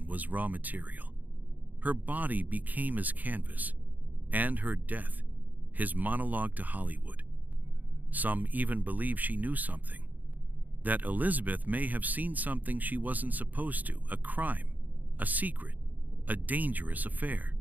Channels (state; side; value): late; left; 0.082 ms